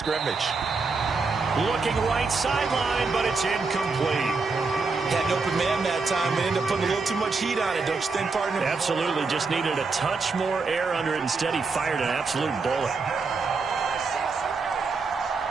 Looking right sideline, but it's incomplete. Had an open man that time and ended up putting a little too much heat on it, don't you think, partner? Absolutely. Just needed a touch more air under it. Instead, he fired an absolute bullet.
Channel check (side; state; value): left; quieter; 4.3 dB